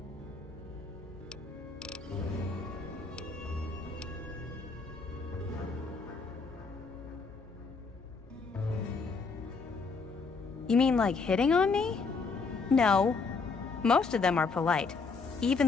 You mean like hitting on me? No. Most of them are polite. Even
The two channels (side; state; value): right; quieter; 4.5 dB